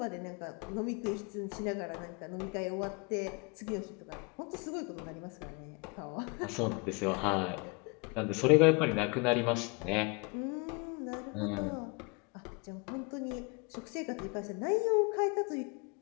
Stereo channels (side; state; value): right; quieter; 30.1 dB